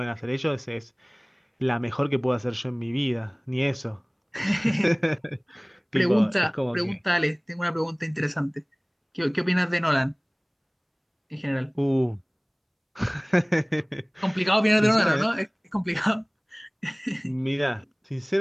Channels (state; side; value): identical; both; correlation 1.00